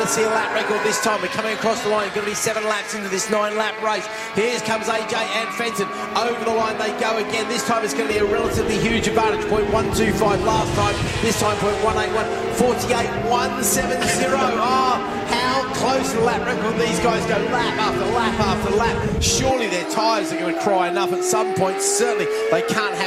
to see a lap record this time? We're coming across the line. It's going to be 7 laps into this 9-lap race. Here comes AJ and Fenton. Over the line they go again. This time it's going to be a relatively huge advantage. 0.125 last time. This time 0.181. 48.170. Oh, how close to the lap record these guys go lap after lap after lap. Surely their tyres are going to cry enough at some point. Certainly they can't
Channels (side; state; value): both; identical; correlation 1.00